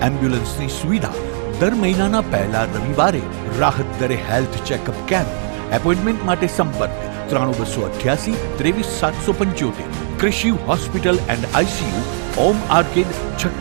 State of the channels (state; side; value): silent; left; 64 dB below the other